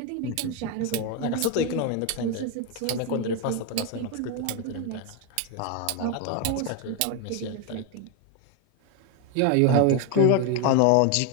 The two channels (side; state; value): both; different; correlation 0.02